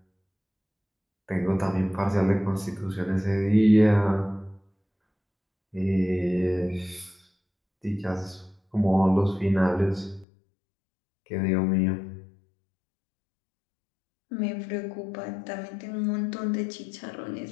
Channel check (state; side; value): drops out; right; at 10.2 s